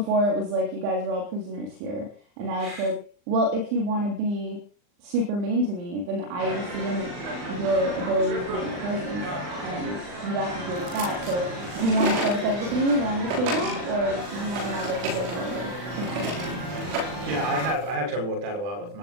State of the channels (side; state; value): left; late; 40 ms